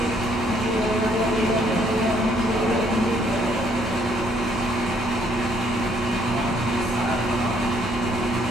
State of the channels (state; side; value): normal; both; correlation 0.66